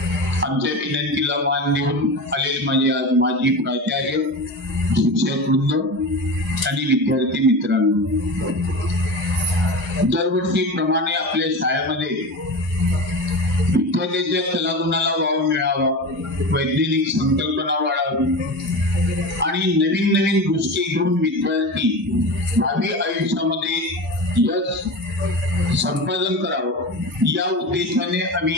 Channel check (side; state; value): both; normal; correlation 0.27